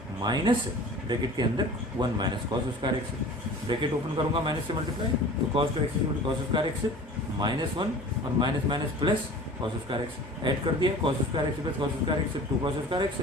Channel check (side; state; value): both; normal; correlation 0.42